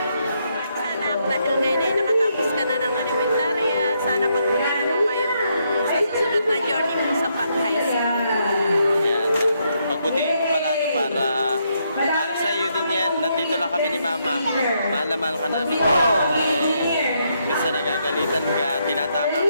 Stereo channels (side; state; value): both; inverted; correlation -0.76